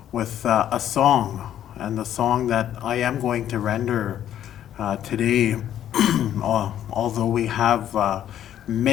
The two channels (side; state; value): right; quieter; 11.0 dB